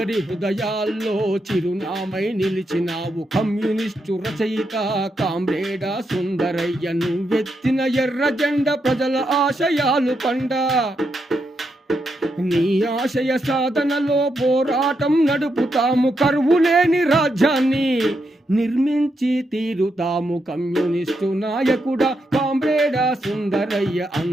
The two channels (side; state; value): both; normal; correlation 0.82